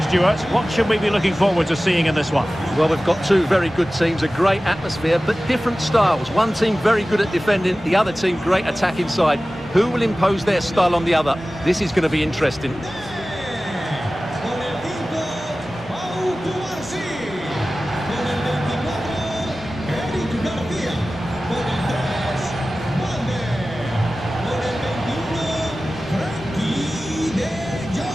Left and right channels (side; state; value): both; normal; correlation 0.96